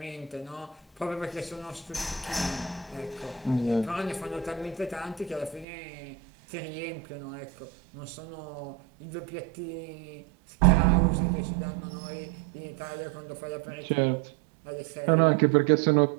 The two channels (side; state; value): left; drops out; at 5.7 s